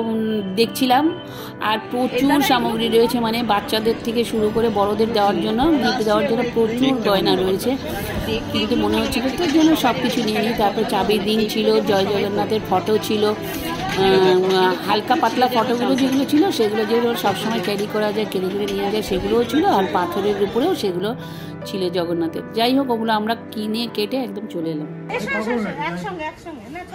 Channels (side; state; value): both; identical; correlation 1.00